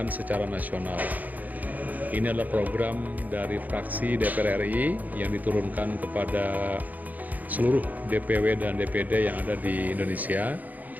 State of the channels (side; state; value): left; late; 0.081 ms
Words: secara nasional. Ini adalah program dari fraksi DPR RI yang diturunkan kepada seluruh DPW dan DPD yang ada di Indonesia.